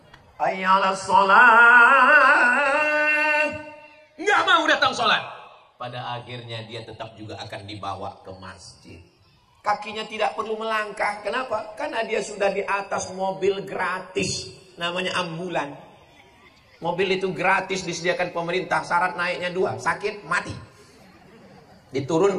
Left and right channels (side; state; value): both; identical; correlation 1.00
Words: ayyalas sholat, nggak mau datang sholat. Pada akhirnya dia tetap juga akan dibawa ke masjid. Kakinya tidak perlu melangkah. Kenapa? Karena dia sudah di atas mobil gratis, namanya ambulan. Mobil itu gratis disediakan pemerintah, syarat naiknya 2, sakit mati.